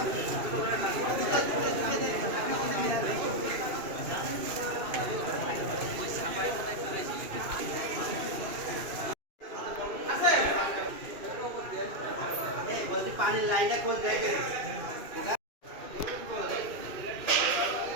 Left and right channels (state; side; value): late; left; 2.5 ms